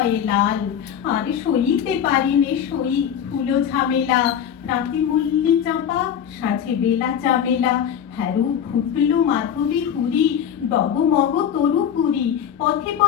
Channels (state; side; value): quieter; right; 8.9 dB